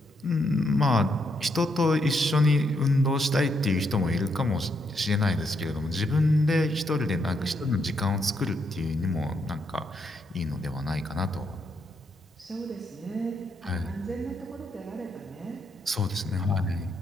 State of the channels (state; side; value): normal; both; correlation 0.77